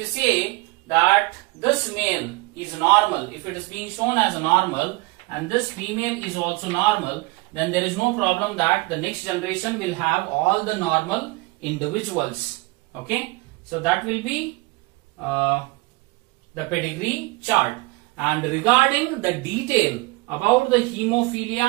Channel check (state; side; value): quieter; left; 23.7 dB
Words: say that this male is normal, if it is being shown as normal and this female is also normal, then there is no problem that the next generation will have all the normal individuals. Okay, so that will be the pedigree chart. And regarding the detail about the